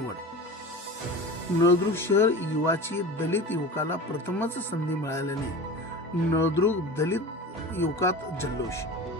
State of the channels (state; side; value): normal; both; correlation 0.34